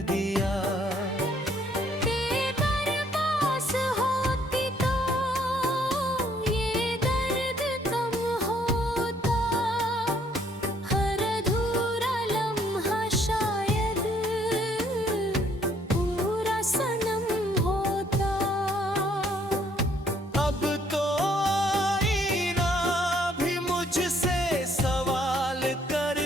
दिया। तेरे पास होती तो ये दर्द कम होता। हर अधूरा लम्हा शायद पूरा सनम होता। अब तो आईना भी मुझसे सवाल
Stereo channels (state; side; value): normal; both; correlation 0.65